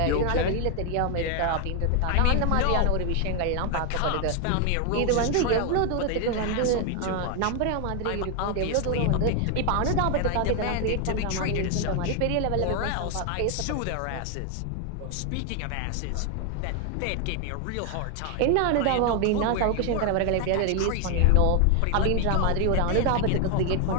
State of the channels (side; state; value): both; different; correlation 0.00